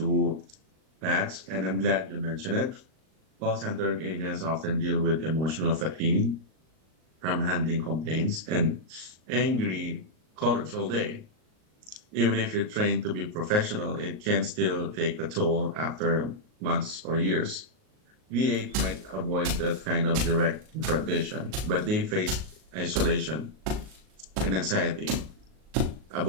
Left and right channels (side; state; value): left; late; 38 ms